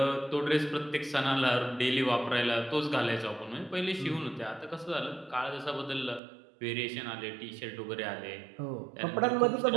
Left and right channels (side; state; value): left; drops out; at 6.2 s